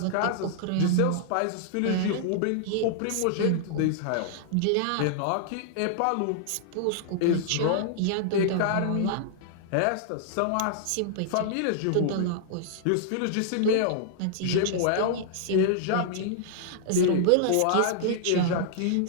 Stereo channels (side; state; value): both; different; correlation -0.01